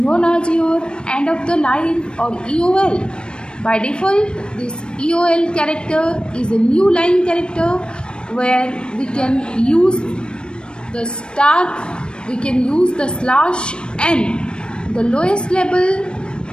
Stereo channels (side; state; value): right; late; 0.054 ms